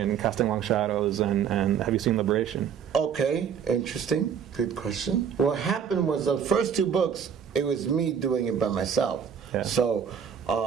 Casting Long Shadows and Have You Seen Liberation? Okay, interesting, good question. What happened was the first two books, it was me doing it by myself. Yeah. So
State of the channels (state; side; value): quieter; left; 7.7 dB